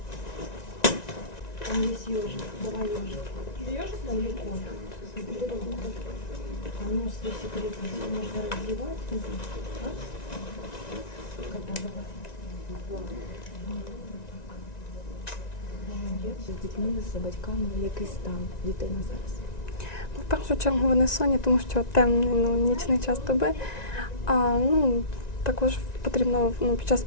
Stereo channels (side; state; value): right; late; 1.9 ms